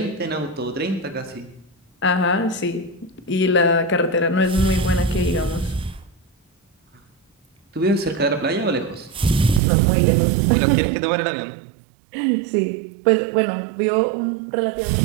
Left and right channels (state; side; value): drops out; left; at 9.6 s